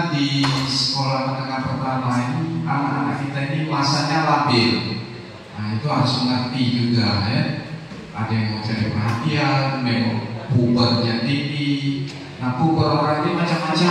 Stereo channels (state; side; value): identical; both; correlation 1.00